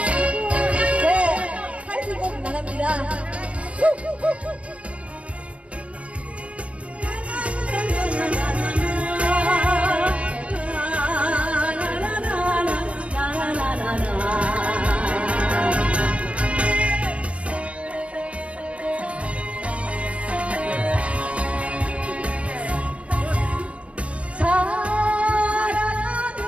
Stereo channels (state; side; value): late; left; 0.063 ms